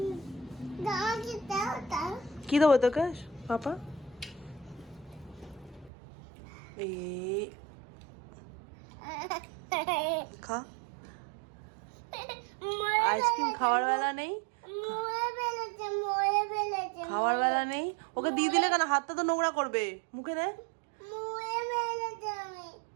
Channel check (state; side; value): drops out; left; at 5.9 s